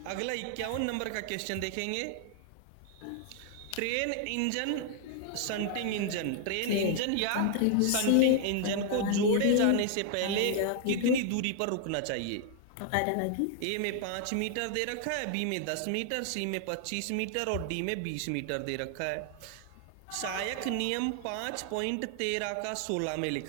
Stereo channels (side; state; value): both; different; correlation 0.00